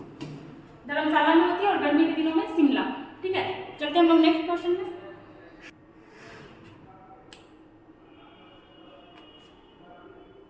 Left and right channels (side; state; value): both; identical; correlation 1.00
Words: धर्मशाला में होती है और गर्मी के दिनों में शिमला। ठीक है, चलते हम लोग नेक्स्ट क्वेश्चन में।